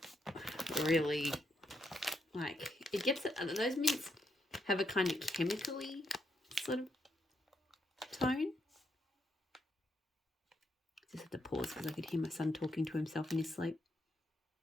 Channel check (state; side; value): normal; both; correlation 0.79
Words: Really, like, it gets it. Those mints have a kind of chemically sort of tone. Just have to pause because I could hear my son talking to himself in his sleep.